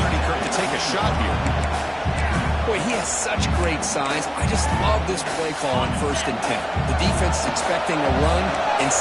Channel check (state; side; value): identical; both; correlation 1.00